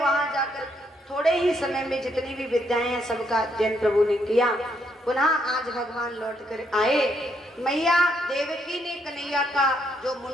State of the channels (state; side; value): normal; both; correlation 0.74